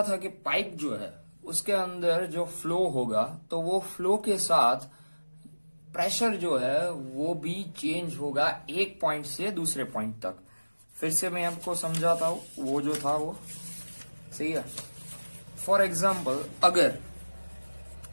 था कि पाइप जो है उसके अंदर जो फ्लो होगा तो वो फ्लो के साथ प्रेशर जो है वो भी चेंज होगा एक पॉइंट से दूसरे पॉइंट तक। फिर से मैं आपको समझाता हूं, वो जो था वो सही है। फॉर एग्जाम्पल, अगर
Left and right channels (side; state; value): both; inverted; correlation -1.00